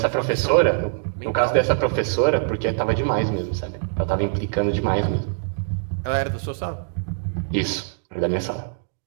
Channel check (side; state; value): left; silent; digital silence